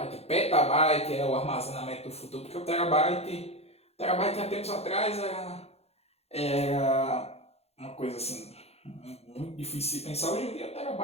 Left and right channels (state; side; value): late; right; 0.30 ms